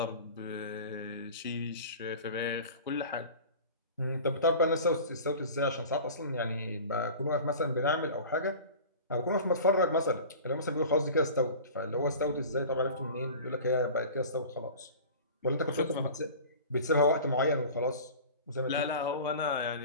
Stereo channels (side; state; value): both; inverted; correlation -0.38